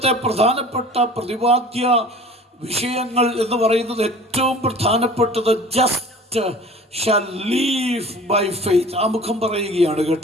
പ്രധാനപ്പെട്ട പ്രതിപാദ്യ വിഷയങ്ങൾ എന്ന് പറയുന്നത് ഏറ്റവും പ്രധാനപ്പെട്ടത് just shall live by faith. ആ മുഖം പറയുകയാണ്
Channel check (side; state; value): both; normal; correlation 0.43